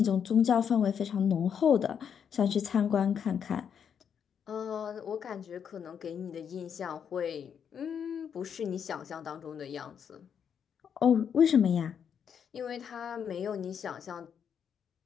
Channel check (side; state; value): right; quieter; 7.7 dB